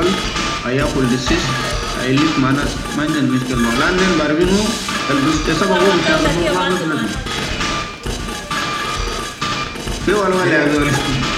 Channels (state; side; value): identical; both; correlation 1.00